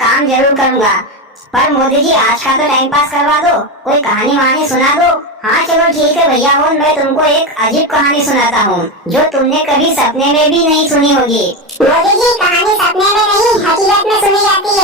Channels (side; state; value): both; normal; correlation 0.15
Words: जरूर करूँगा। पर मोदी जी, आज का तो टाइम पास करवा दो, कोई कहानी वहानी सुना दो। हाँ चलो ठीक है भैया, और मैं तुमको एक अजीब कहानी सुनाता हूँ जो तुमने कभी सपने में भी नहीं सुनी होगी। मोदी जी, कहानी सपने में नहीं हकीकत में सुनी जाती